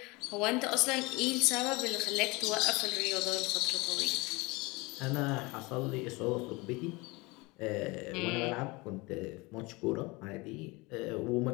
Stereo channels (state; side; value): quieter; right; 24.6 dB